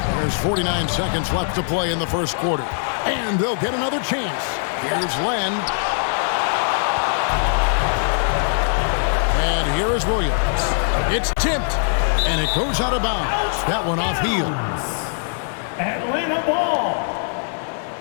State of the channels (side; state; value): right; silent; digital silence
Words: There's 49 seconds left to play in the first quarter. And they'll get another chance. Here's Len. And here is Williams. It's tipped, and it goes out of bounds. That one off heel. Atlanta ball.